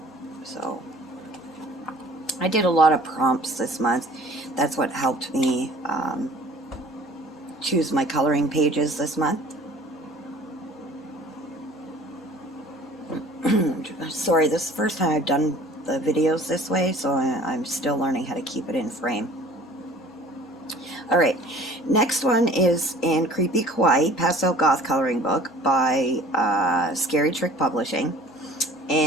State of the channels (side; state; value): both; normal; correlation 0.47